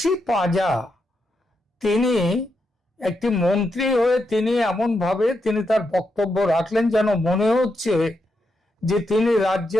পাঁজা তিনি একটি মন্ত্রী হয়ে তিনি এমনভাবে তিনি তার বক্তব্য রাখলেন যেন মনে হচ্ছে যে তিনি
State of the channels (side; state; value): both; normal; correlation 0.83